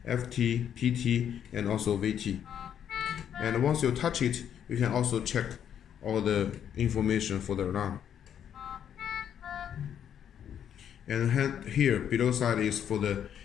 PT, and also VT. And once you touch it, you can also check all the information for the alarm. And here below side is for the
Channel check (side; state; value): right; quieter; 9.2 dB